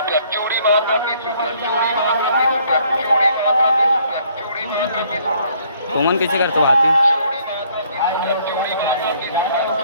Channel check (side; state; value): both; inverted; correlation -0.63